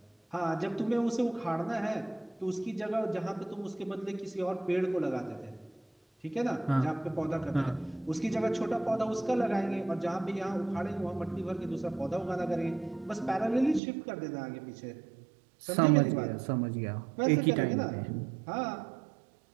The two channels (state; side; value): drops out; left; at 13.8 s